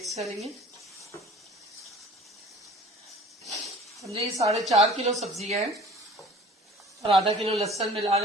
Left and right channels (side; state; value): both; normal; correlation 0.46